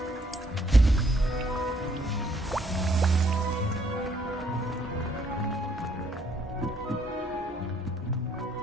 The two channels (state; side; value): normal; both; correlation 0.67